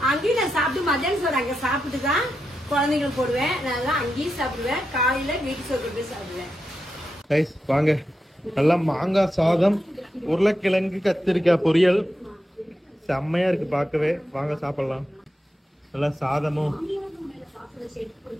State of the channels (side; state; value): both; normal; correlation 0.87